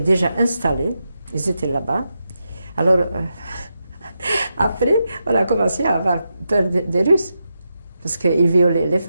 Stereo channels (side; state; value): both; inverted; correlation -0.87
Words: déjà installés, ils étaient là-bas. Alors, après, on a commencé à avoir peur des Russes. Parce qu'ils violaient les